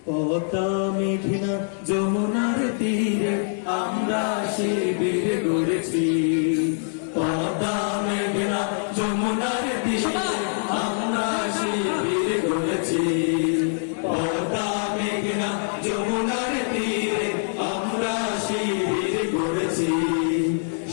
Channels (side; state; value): right; silent; digital silence